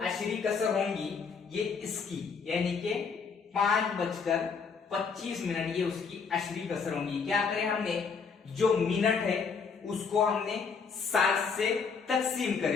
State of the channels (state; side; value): quieter; right; 5.5 dB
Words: कसर होंगी ये इसकी, यानी कि 5:25 ये उसकी अशरी कसर होंगी। क्या करें हमने, जो मिनट है उसको हमने 60 से तकसीम